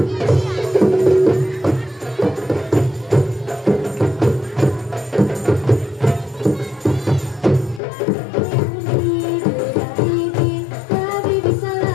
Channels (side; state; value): right; drops out; at 7.8 s